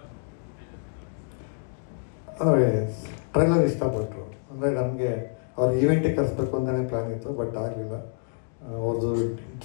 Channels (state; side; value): silent; right; 60 dB below the other